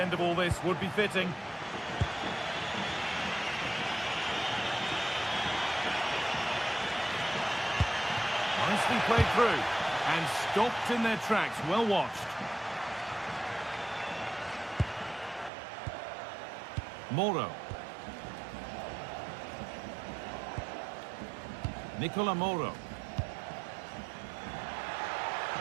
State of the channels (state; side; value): drops out; left; at 15.5 s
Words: of all this would be fitting. Nicely played through and stopped in their tracks. Well watched. Moro. Nicola Moro.